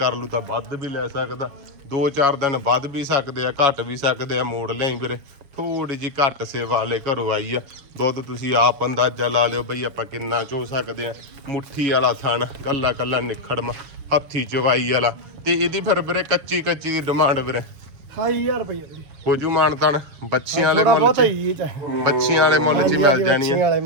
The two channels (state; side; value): late; left; 6.9 ms